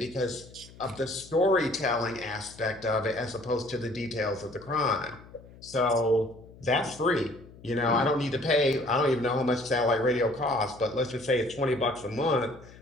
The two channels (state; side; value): noise; left; hum, 21 dB below the sound